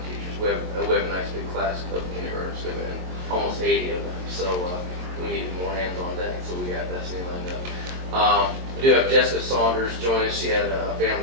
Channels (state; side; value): late; left; 22 ms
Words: teacher. We have a nice big class of kindergartners coming in, almost 80 of them. So we need more hands on deck, so we got Destiny lined up. We do have Jessica Saunders join us. She had a